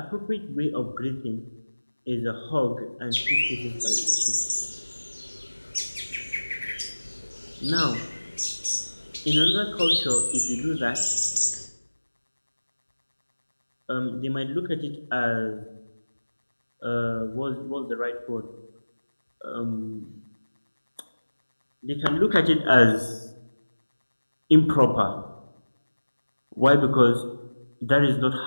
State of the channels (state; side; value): inverted; both; correlation -1.00